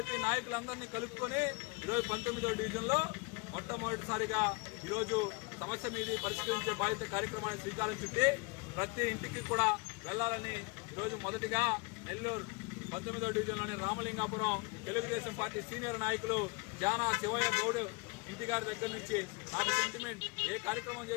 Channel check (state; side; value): quieter; right; 28.3 dB